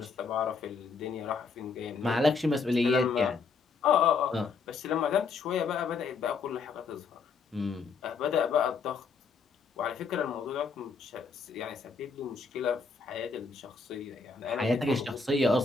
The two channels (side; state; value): right; quieter; 4.8 dB